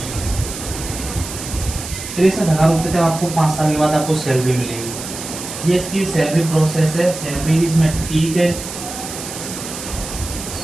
63,000 रुपये तक आपको 5 साल के बाद आपको सैलरी मिलेगी। ये इसकी सैलरी प्रोसेस है। सैलरी इसमें ठीक है,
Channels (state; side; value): noise; right; hiss, 9 dB below the sound